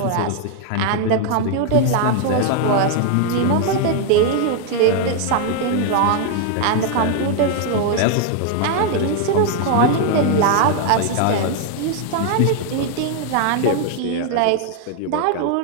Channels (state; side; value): different; both; correlation 0.00